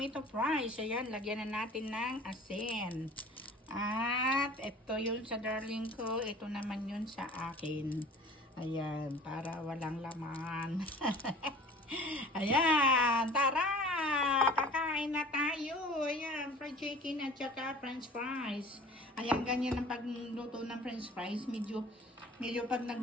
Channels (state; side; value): normal; both; correlation 0.45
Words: fries. Ayan, lagyan na natin ng asin. At ito yun sa darling ko, ito naman yun sa akin. Ayan, para walang laman. Ayan, tara! Kakain na tayo. Ayan, fried chicken at saka french fries. Ayan, ganyan ang pagluto ng french fries. Medyo pag